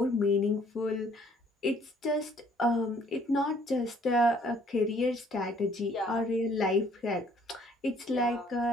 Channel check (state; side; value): normal; both; correlation 0.61